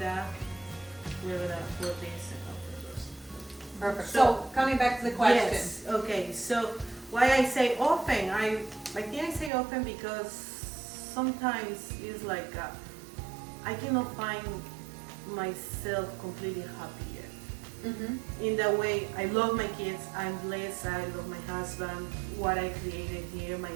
we're gonna put this in the roast. Perfect. So- So coming back to the question. Yes. Okay. So why I say often? I think I say often because sometimes it's like I cannot find myself completely happy yet. In the way I love my kids, I'm blessed, I love my husband, what I created here, my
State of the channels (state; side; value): drops out; left; at 9.5 s